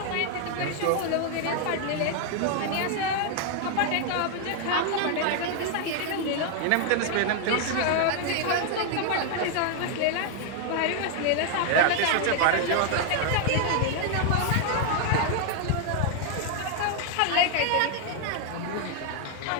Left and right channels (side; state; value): both; different; correlation 0.00